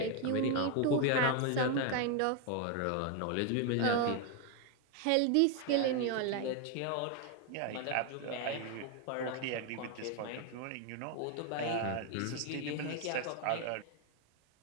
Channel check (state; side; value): different; both; correlation 0.01